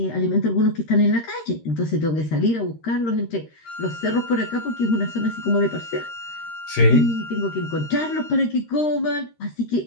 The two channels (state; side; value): late; right; 13 ms